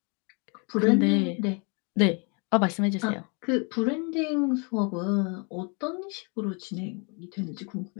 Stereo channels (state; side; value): quieter; right; 34.7 dB